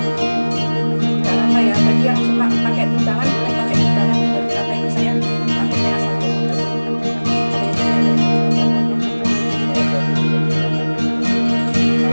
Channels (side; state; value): both; inverted; correlation -1.00